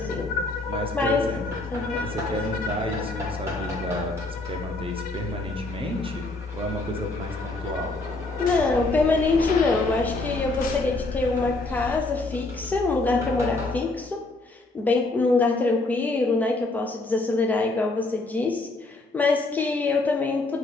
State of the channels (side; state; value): right; quieter; 3.1 dB